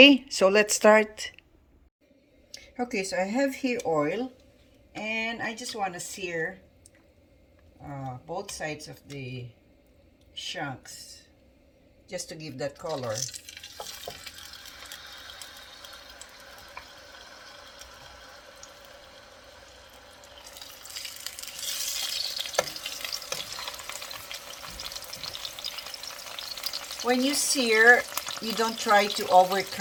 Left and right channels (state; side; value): identical; both; correlation 1.00